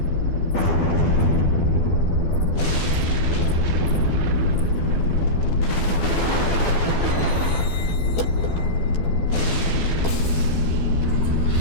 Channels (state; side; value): late; right; 12 ms